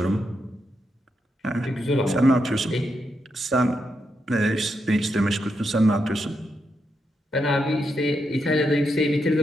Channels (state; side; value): normal; both; correlation 0.83